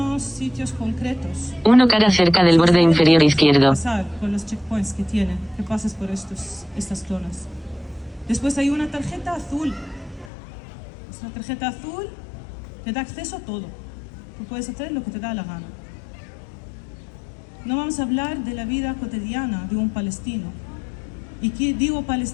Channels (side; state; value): right; drops out; at 10.3 s